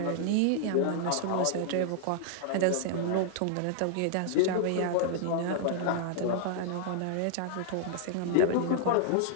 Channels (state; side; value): different; both; correlation -0.01